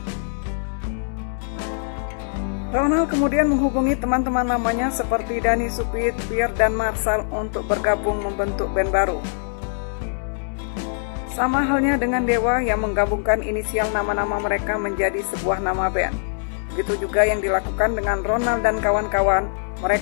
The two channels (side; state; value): right; silent; digital silence